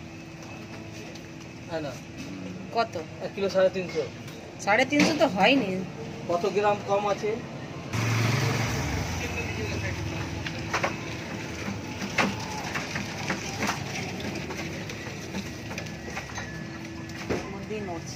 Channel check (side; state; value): both; identical; correlation 1.00